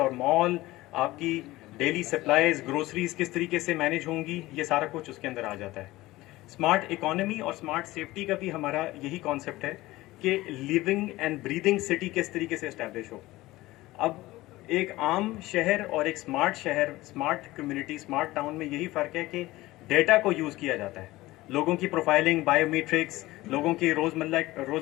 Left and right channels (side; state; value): right; quieter; 18.3 dB